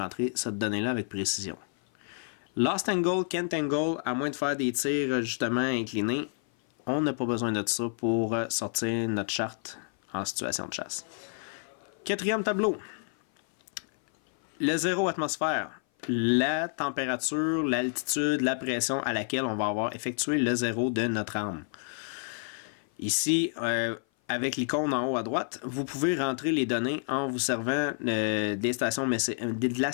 cette donnée-là avec précision. Lost angle, can't angle, à moins de faire des tirs justement inclinés, on n'a pas besoin de ça pour sortir notre charte en situation de chasse. Quatrième tableau. Le 0 atmosphère, la température, l'altitude, la pression à laquelle on va avoir effectué le 0 de notre arme. Ici, avec l'icône en haut à droite, vous pouvez rentrer les données en vous servant de la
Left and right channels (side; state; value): right; silent; 56 dB below the other